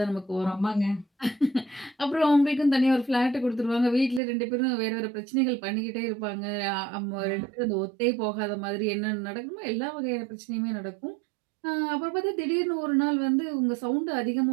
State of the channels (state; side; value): drops out; left; at 4.2 s